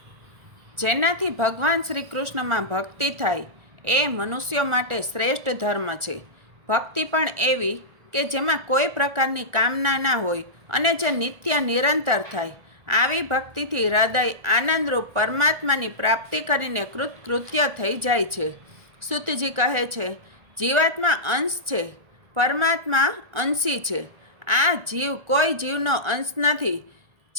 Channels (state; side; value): late; left; 1.4 ms